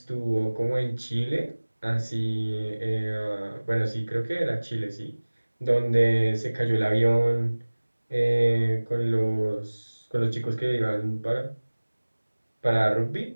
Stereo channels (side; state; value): both; inverted; correlation -1.00